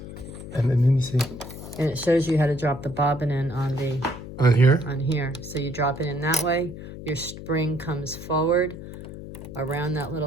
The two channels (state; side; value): noise; left; hum, 12 dB below the sound